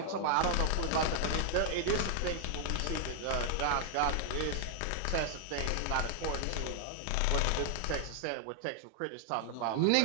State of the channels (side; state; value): both; different; correlation 0.00